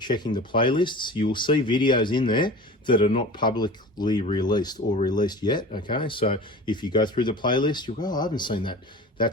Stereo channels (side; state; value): both; normal; correlation 0.36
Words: the playlists, you will see videos in there that are not publicly released or released yet, okay? So if you go through the playlist, you'll go, oh, I haven't seen that.